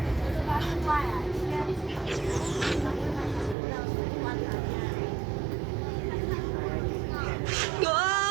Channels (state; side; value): drops out; left; at 3.6 s